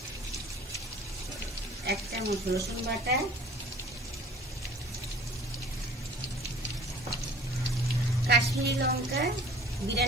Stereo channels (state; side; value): normal; both; correlation 0.49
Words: 1 চামচ রসুন বাটা, কাশ্মীরি লঙ্কা,